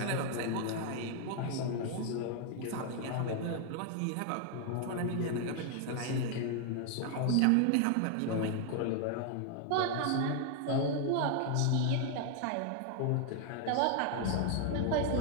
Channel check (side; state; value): both; different; correlation 0.00